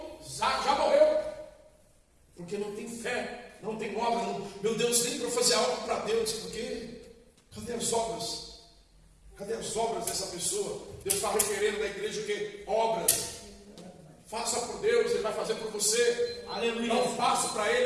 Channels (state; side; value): identical; both; correlation 1.00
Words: já morreu. Porque não tem fé, não tem obra. Não, meu Deus, nem para fazer algo para Deus. Porque cadê as obras? Cadê as obras dessa pessoa? Deus está requerendo da igreja o quê? Obras. Faça por Deus, Ele vai fazer por você. Aleluia. Dá um passo para